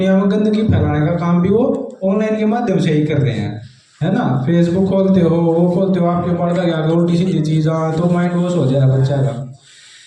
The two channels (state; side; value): identical; both; correlation 1.00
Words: में गंदगी फैलाने का काम भी वो ऑनलाइन के माध्यम से ही कर रहे हैं, है ना। फेसबुक खोलते हो, वो खोलते हो, आपके पढ़ता गया उल्टी सीधी चीज़ तो माइंड वॉश हो जाए बच्चा का।